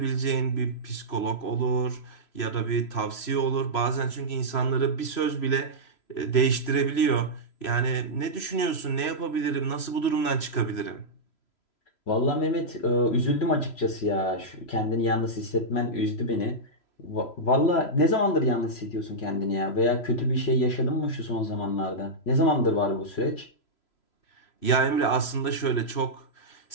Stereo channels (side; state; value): right; late; 3.0 ms